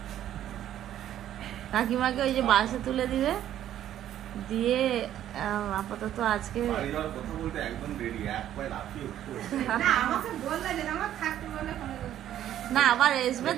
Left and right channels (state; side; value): quieter; left; 11.5 dB